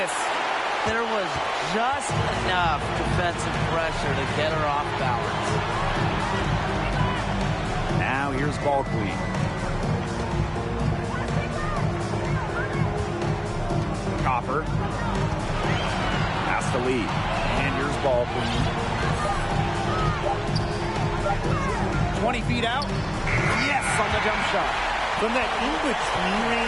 There was just enough defensive pressure to get her off balance. Now here's Ball Queen. Copper. Pass to Lee. And here's Ball Queen. 20 feet out. Yes, on the jump shot. From that in-between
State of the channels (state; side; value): identical; both; correlation 1.00